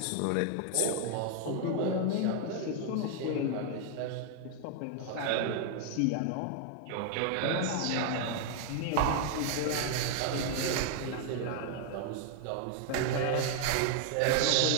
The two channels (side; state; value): both; different; correlation 0.00